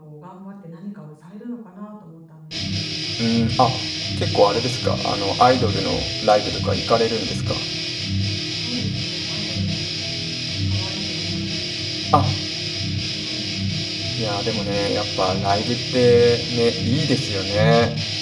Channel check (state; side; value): identical; both; correlation 1.00